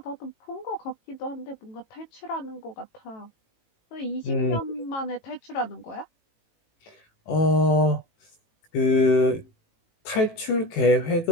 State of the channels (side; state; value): right; late; 18 ms